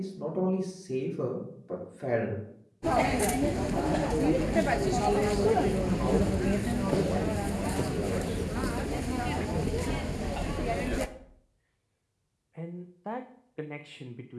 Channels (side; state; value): both; identical; correlation 1.00